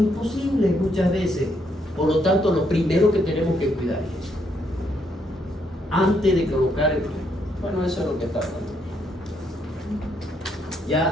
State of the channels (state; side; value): normal; both; correlation 0.74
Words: muchas veces. Por lo tanto, lo primero que tenemos que cuidar es eso. Antes de colocar el tubo. Bueno, eso es lo que está hablando. Ya,